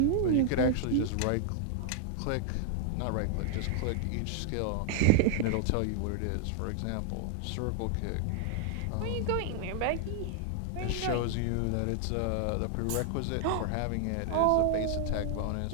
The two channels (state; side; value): different; both; correlation 0.00